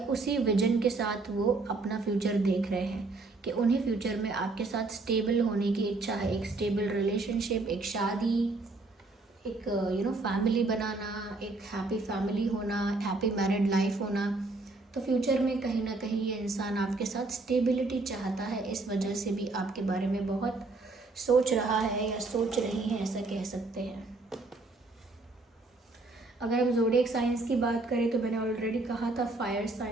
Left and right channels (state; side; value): quieter; left; 3.4 dB